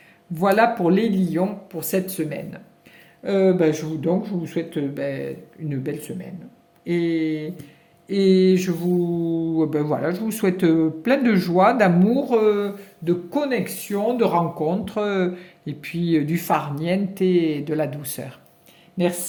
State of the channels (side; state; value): both; identical; correlation 1.00